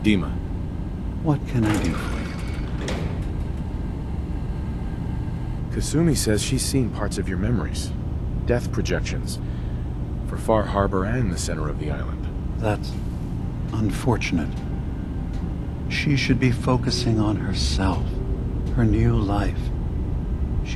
Dima. What can I do for you? Kasumi says she's seen parts of your memories. Death projections. For Far Harbor and the center of the island. That's unfortunate. She should be focusing on herself, her new life.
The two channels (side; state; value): both; identical; correlation 1.00